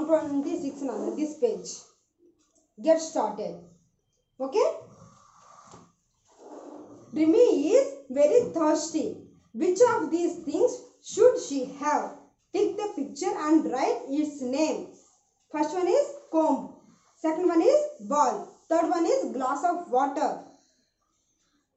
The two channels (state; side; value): identical; both; correlation 1.00